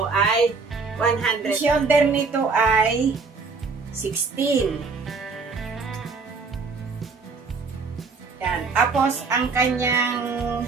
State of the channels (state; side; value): quieter; left; 4.6 dB